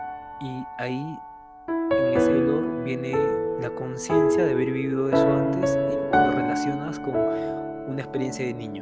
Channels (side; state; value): both; identical; correlation 1.00